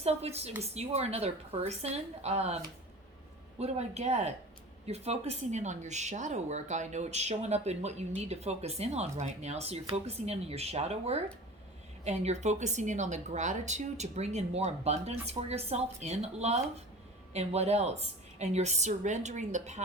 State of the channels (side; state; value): both; normal; correlation 0.37